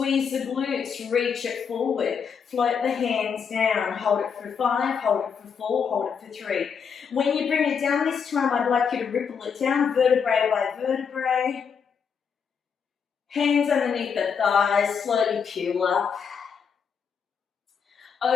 the glutes, reach it forward. Float the hands down. Hold it for 5, hold it for 4, hold it for 3. When you bring it down this time, I'd like you to ripple it down, vertebrae by vertebrae. Hands underneath the thighs, slowly peel up.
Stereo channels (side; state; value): right; quieter; 6.6 dB